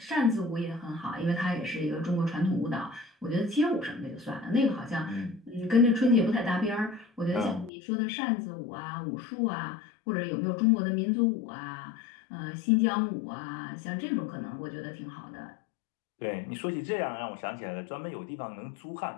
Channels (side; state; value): right; drops out; at 7.7 s